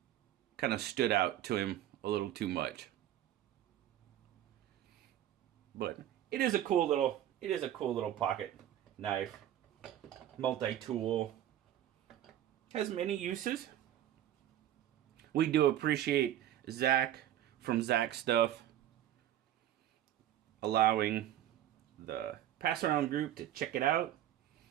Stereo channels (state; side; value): quieter; left; 12.1 dB